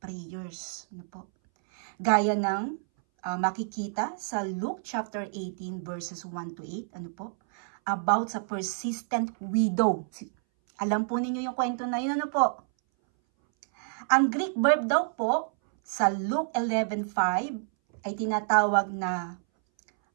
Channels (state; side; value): silent; left; 59 dB below the other